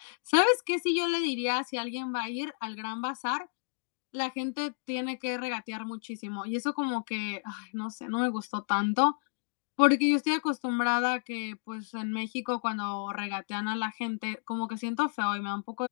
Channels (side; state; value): right; silent; 57 dB below the other